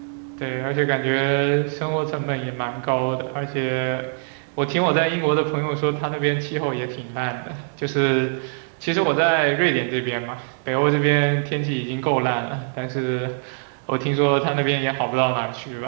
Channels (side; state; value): left; silent; digital silence